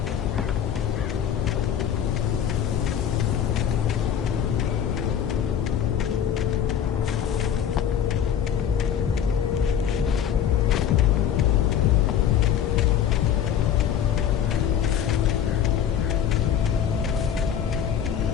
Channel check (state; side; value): quieter; right; 9.1 dB